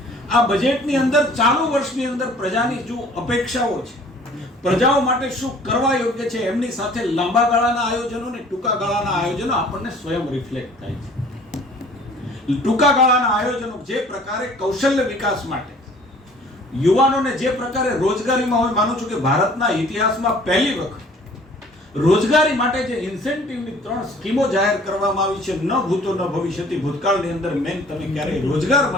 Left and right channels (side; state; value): both; normal; correlation 0.52